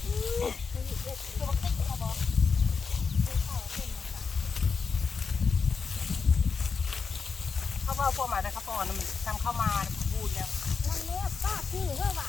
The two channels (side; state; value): right; quieter; 5.3 dB